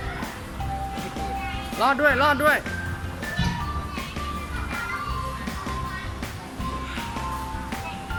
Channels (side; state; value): both; identical; correlation 1.00